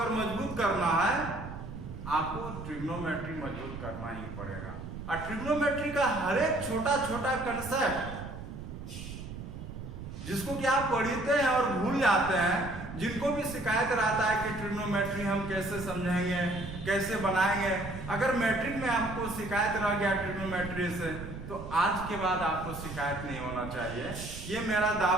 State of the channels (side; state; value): right; noise; rumble, 10 dB below the sound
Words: मजबूत करना है, आपको ट्रिग्नोमेट्री मजबूत करना ही पड़ेगा। और ट्रिग्नोमेट्री का हर एक छोटा छोटा कंसेप्ट जिसको कि आप पढ़ते हैं और भूल जाते हैं, जिनको भी शिकायत रहता है कि ट्रिग्नोमेट्री हम कैसे समझेंगे, कैसे बनाएंगे, अगर मैट्रिक में आपको शिकायत रह गया ट्रिग्नोमेट्री से, तो आज के बाद आपको शिकायत नहीं होना चाहिए। ये मेरा